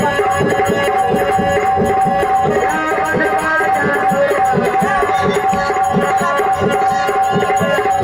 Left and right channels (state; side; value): identical; both; correlation 1.00